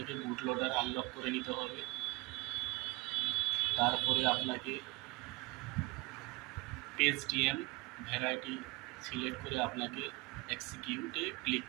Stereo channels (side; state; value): left; quieter; 24.4 dB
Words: বুট লোডার আনলক করে নিতে হবে। তারপরে আপনাকে পেজ ডিএম ভ্যারাইটি সিলেক্ট করে আপনাকে এক্সিকিউটে ক্লিক